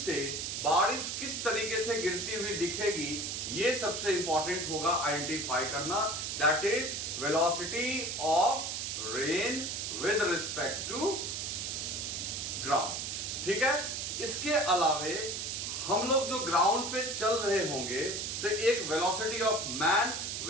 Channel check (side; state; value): right; noise; hiss, 3 dB below the sound